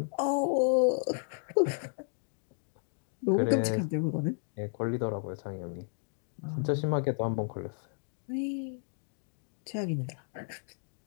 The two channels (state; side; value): silent; right; digital silence